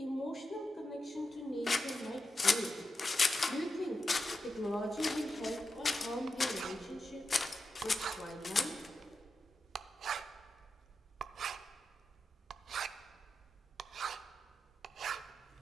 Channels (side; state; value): both; normal; correlation 0.88